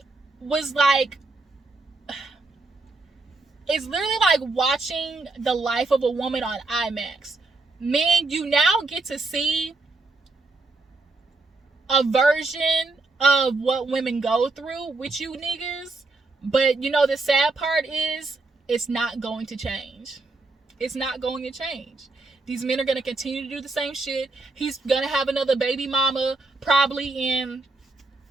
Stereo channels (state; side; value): quieter; left; 3.4 dB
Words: was like, it's literally like watching the life of a woman on IMAX. Men, you now get to see a version of what women go through with you niggas. But the sad part is it's not going to change. It's not going to change. These men are going to continue to do the same shit. He's going to have another baby mama probably in